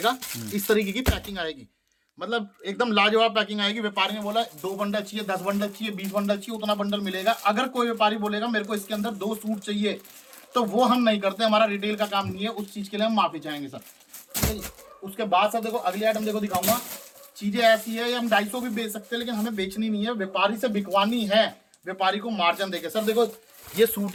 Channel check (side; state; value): both; identical; correlation 1.00